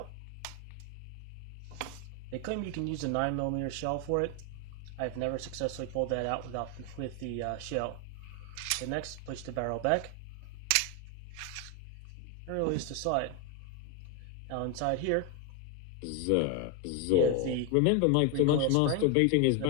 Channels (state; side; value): different; both; correlation 0.01